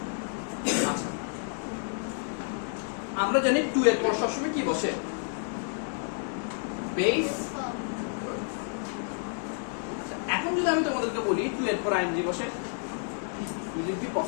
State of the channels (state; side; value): silent; right; 58 dB below the other